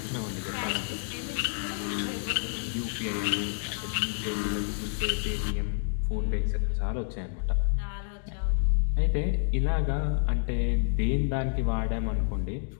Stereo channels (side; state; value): right; silent; 59 dB below the other